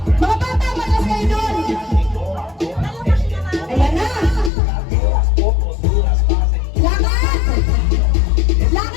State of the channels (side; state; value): right; drops out; at 4.5 s